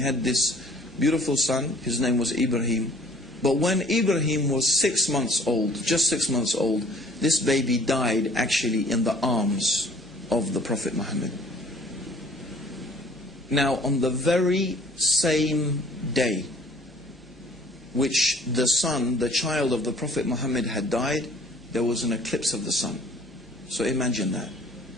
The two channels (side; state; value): both; normal; correlation 0.54